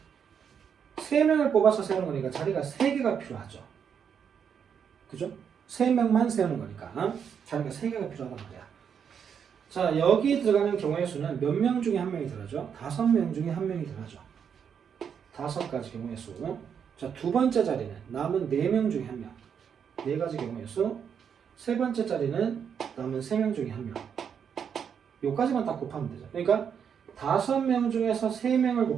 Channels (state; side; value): quieter; left; 7.5 dB